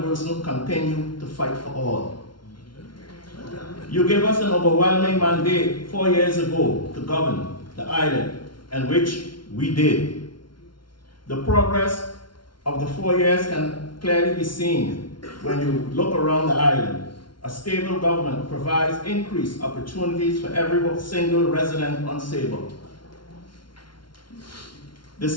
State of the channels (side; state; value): right; late; 0.73 ms